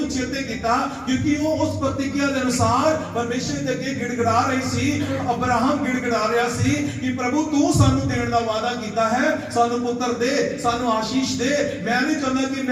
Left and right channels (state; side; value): identical; both; correlation 1.00